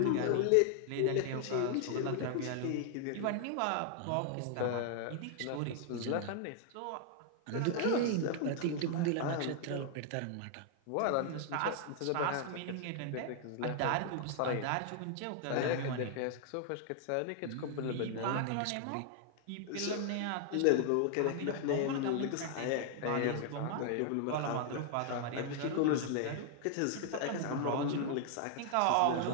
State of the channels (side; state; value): both; different; correlation 0.00